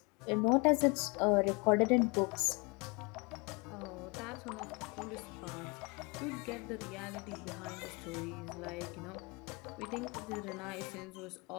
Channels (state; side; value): quieter; right; 29.3 dB